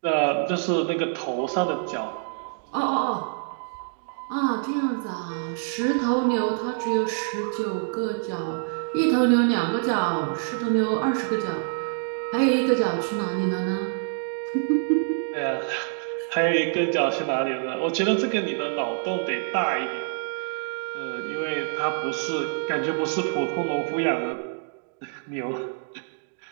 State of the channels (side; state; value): left; silent; digital silence